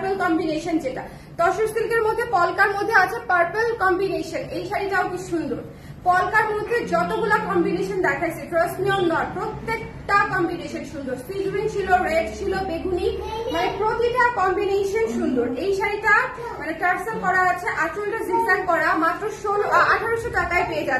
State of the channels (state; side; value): identical; both; correlation 1.00